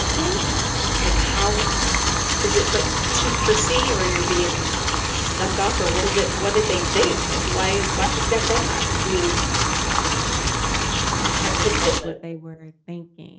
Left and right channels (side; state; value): both; identical; correlation 1.00